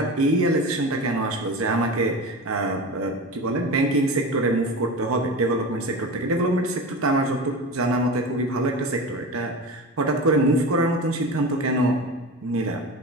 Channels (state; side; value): normal; both; correlation 0.28